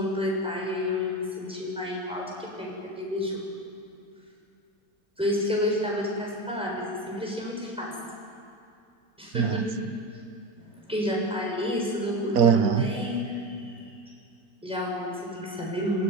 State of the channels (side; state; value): both; normal; correlation 0.22